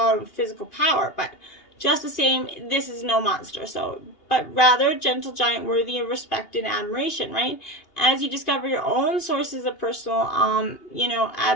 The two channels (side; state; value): right; late; 2.8 ms